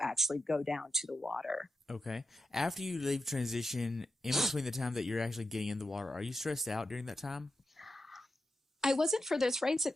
actually go down to the water. Okay. After you leave transition, in between the time that you're actually getting in the water, are you stressed out during that time? I wasn't for this race.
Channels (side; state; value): both; normal; correlation 0.88